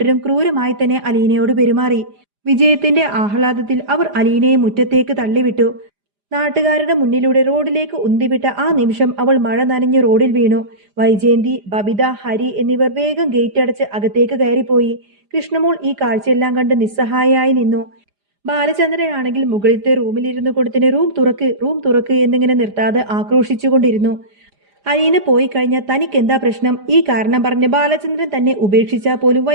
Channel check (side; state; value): left; late; 4.9 ms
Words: ക്രൂരമായി തന്നെ അലീനയോട് പെരുമാറി. വിജയത്തിന്റെ ആഹ്ലാദത്തിൽ അവർ അലീനയെ മുറ്റത്തേക്ക് തള്ളിവിട്ടു. നാട്ടുകാരുടെ മുന്നിലൂടെ റോഡിലേക്ക് ഉന്തിവിട്ട ആ നിമിഷം അവൾ മഴ നനഞ്ഞു റോഡിൽ വീണു. വൈജയന്തി, ബബിത, ഹരി എന്നിവർ വേഗം ഗേറ്റ് അടച്ച് അകത്തേക്ക് കയറിപ്പോയി. കൃഷ്ണമോൾ ഈ കാഴ്ചയെല്ലാം കണ്ട് നിസ്സഹായയായി നിന്നു. ബാലചന്ദ്രനാണെങ്കിൽ മുകളിലത്തെ റൂമിലിരുന്നു കൊടുത്തിന് റൂം തുറക്ക്, റൂം തുറക്ക് എന്നിങ്ങനെ നിർത്താതെ ആക്രോശിച്ചുകൊണ്ടിരുന്നു. അലീന പോയി കഴിഞ്ഞാൽ തനിക്കെന്താ പ്രശ്നം? ഈ കാരണം പറഞ്ഞ് ബാലചന്ദ്രൻ തന്നെ ഉപേക്ഷിച്ചാൽ പോലും